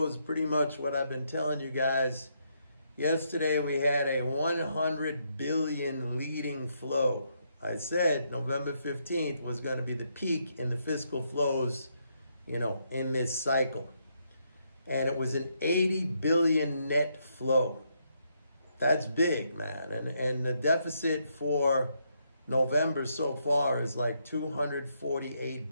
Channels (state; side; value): inverted; both; correlation -0.77